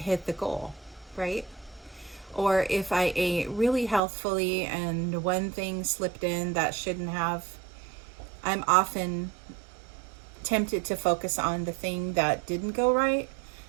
the goal, right? Or if I ate really healthfully and one thing slipped in that shouldn't have, I'm often tempted to focus on the thing that didn't go right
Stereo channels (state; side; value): drops out; left; at 4.0 s